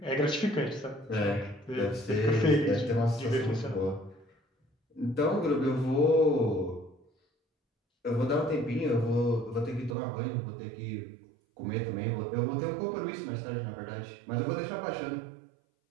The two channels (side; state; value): left; drops out; at 10.0 s